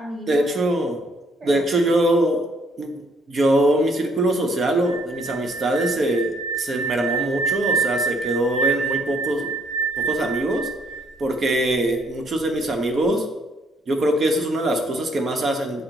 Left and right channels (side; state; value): both; normal; correlation 0.67